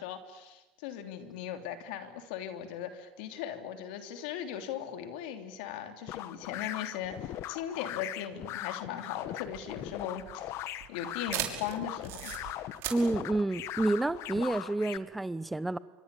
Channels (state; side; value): normal; both; correlation 0.57